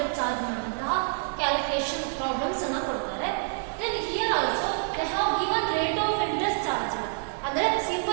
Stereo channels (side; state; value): left; silent; 60 dB below the other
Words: ಚಾರ್ಜ್ ಮಾಡುವಂತಹ ಕ್ಯಾಲ್ಕುಲೇಷನ್ ಪ್ರಾಬ್ಲಮ್ಸ್ ಅನ್ನ ಕೊಡ್ತಾರೆ. Then here also they have given rate of interest charge ಅಂದ್ರೆ